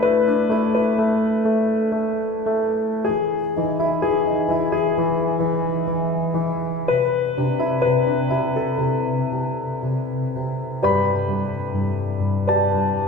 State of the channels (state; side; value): normal; both; correlation 0.47